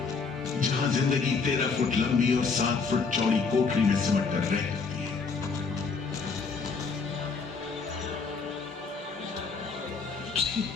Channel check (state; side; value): quieter; right; 4.9 dB